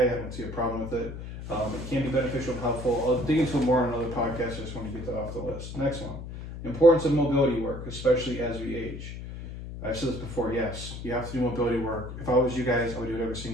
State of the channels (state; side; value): noise; left; hum, 9 dB below the sound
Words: I don't see a problem with it. It can be beneficial and helpful. I'll dig into it more on another podcast. I just want to get that off the list. Next one. Importance of mobility work, especially as we age. I've said this before, yes, you have to do mobility work. If I was you guys, I would do it every